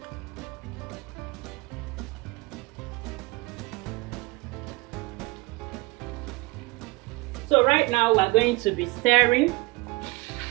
So right now we're going to be stirring.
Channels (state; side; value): quieter; left; 24.7 dB